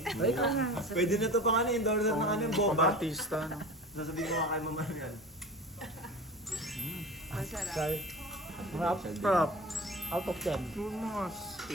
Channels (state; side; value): normal; both; correlation 0.35